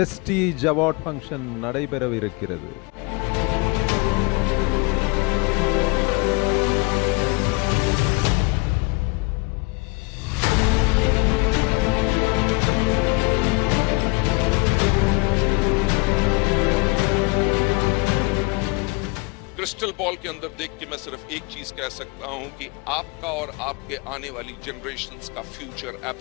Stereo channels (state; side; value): quieter; right; 27.5 dB